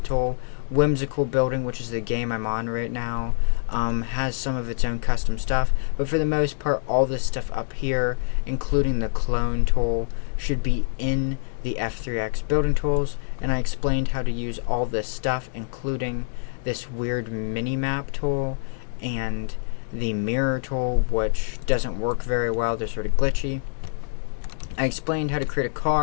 the tool. Whimsical Building, which is the game I'm on right now, has some of its own custom stuff, but for the most part all this stuff up here, including the clone tool, should be in the F3X building tools. And I explained how to use all this stuff, including this weird mini-map tool and the mirror tool, which doesn't work very well. They're sort of glitchy. I explained how to create a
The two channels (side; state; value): right; silent; digital silence